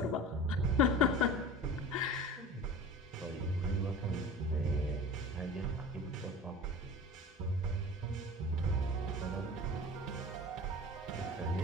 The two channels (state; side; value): normal; both; correlation 0.36